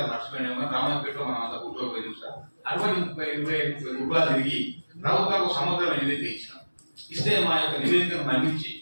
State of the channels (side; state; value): both; inverted; correlation -1.00